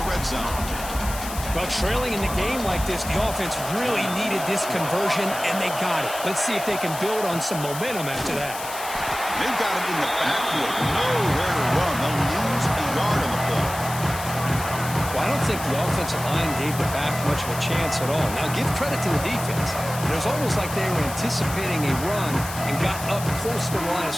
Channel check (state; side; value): noise; left; hiss, 10 dB below the sound